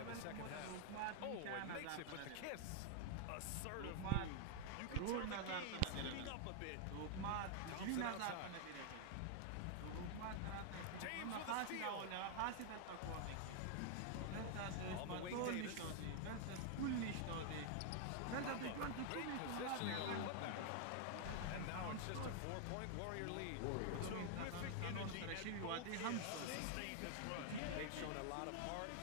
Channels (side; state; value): both; different; correlation 0.00